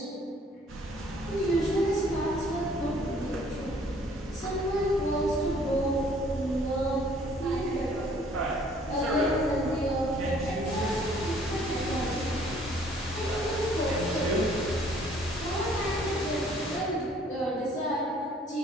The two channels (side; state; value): both; normal; correlation 0.59